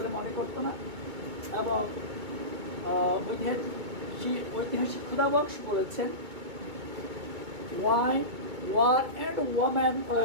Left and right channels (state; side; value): late; left; 2.2 ms